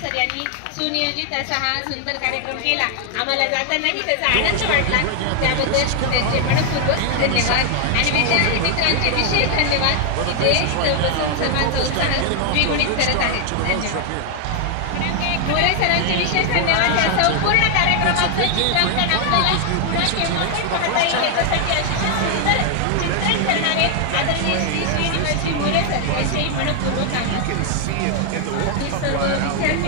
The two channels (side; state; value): both; different; correlation 0.00